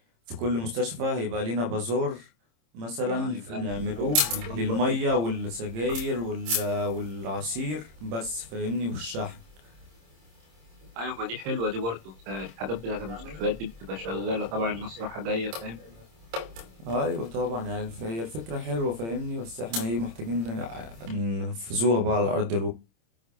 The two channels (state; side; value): late; left; 26 ms